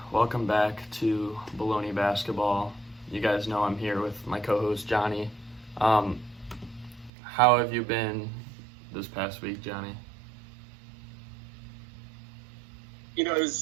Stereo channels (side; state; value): left; drops out; at 7.1 s